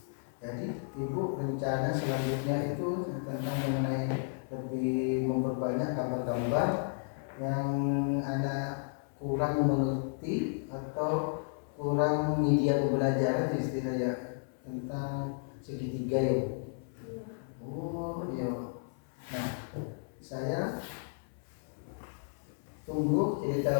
Jadi Ibu rencana selanjutnya itu tentang mengenai lebih memperbanyak gambar-gambar yang anak kurang mengerti atau kurang media pembelajaran istilahnya tentang segitiga ya. Oh iya. Nah, saya tunggu cerita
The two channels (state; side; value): silent; right; 56 dB below the other